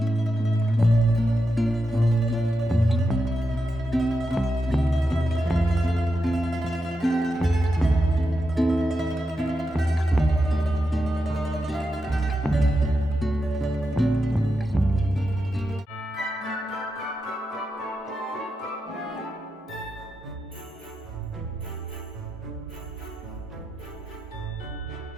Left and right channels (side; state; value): both; normal; correlation 0.87